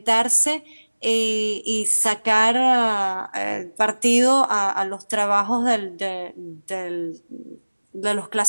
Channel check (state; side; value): inverted; both; correlation -1.00